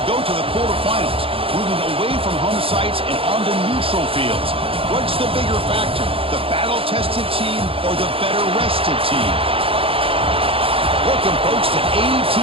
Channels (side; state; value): left; late; 0.27 ms